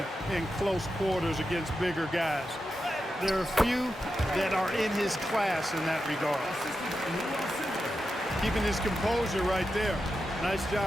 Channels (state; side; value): normal; both; correlation 0.89